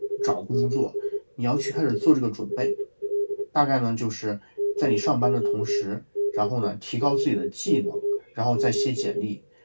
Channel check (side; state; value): both; inverted; correlation -1.00